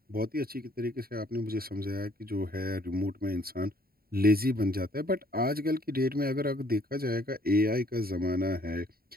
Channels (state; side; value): late; left; 0.44 ms